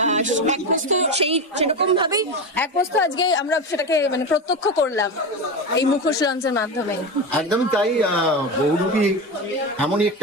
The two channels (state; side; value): normal; both; correlation 0.19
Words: এক বস্তু সেরকম ভাবেই এক বস্তু আজকে আমরা সেটাকে মানে প্রত্যক্ষ করলাম এই মুখোশ লঞ্চের মাধ্যমে। একদমই তাই। বহুরূপী